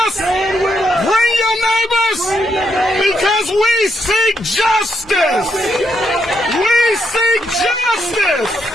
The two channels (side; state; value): both; normal; correlation 0.78